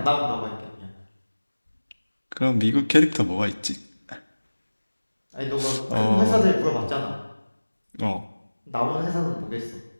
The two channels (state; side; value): inverted; both; correlation -1.00